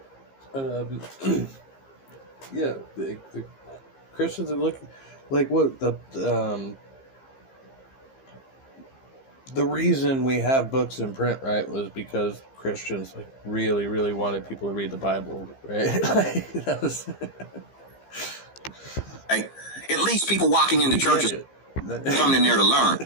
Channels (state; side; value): late; right; 15 ms